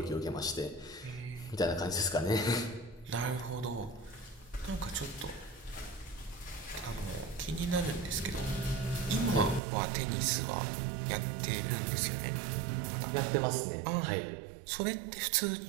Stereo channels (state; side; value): drops out; left; at 9.6 s